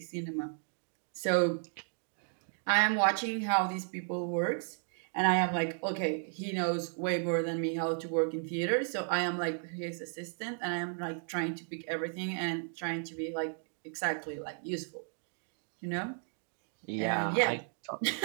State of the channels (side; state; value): left; silent; 55 dB below the other